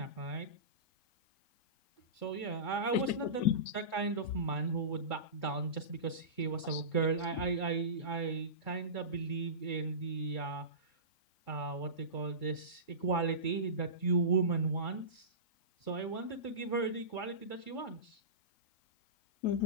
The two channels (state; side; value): late; right; 3.8 ms